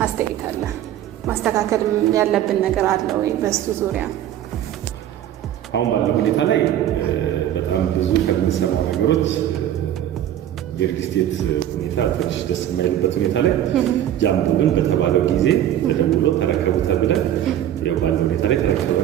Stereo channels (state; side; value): quieter; left; 11.5 dB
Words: አስተያየት አለ ማስተካከል ያለብን ነገር አለ ወይ በሱ ዙሪያ? አሁን ባለው ሁኔታ ላይ በጣም ብዙ ከምንሰማው ነገሮች የሪል ስቴት ሁኔታ ትንሽ ደስ የማይልበት ሁኔታ ላይ ጃምቦ ግን በተባለው ጊዜ ተደውሎ ተረከቡታል ብለን ያው ባለው ሁኔታ ላይ